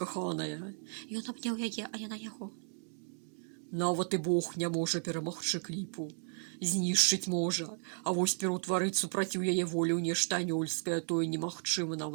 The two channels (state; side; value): silent; left; 55 dB below the other